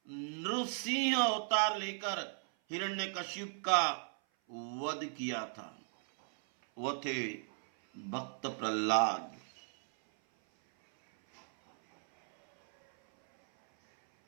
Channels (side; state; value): left; silent; 54 dB below the other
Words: नृसिंह अवतार लेकर हिरण्यकशिप का वध किया था। वह थे भक्त प्रहलाद।